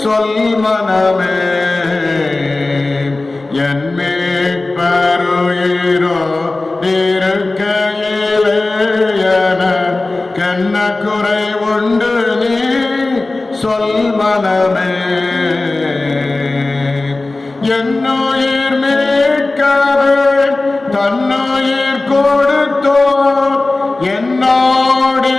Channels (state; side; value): quieter; right; 3.1 dB